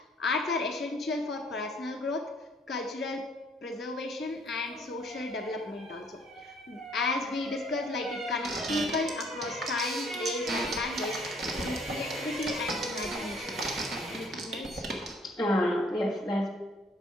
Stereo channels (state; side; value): normal; both; correlation 0.61